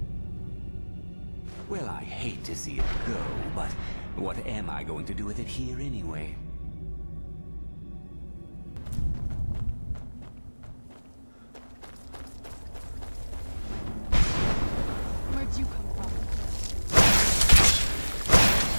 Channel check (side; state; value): both; inverted; correlation -1.00